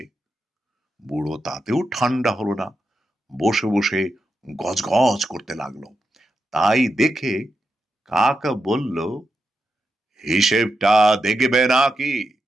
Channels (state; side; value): normal; both; correlation 0.87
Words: বুড়ো তাতেও ঠান্ডা হলো না, বসে বসে গজগজ করতে লাগলো। তাই দেখে কাক বলল, হিসেবটা দেখবে নাকি?